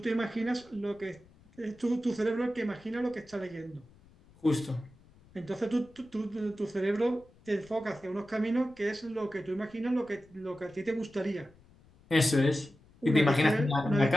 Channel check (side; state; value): left; noise; rumble, 27 dB below the sound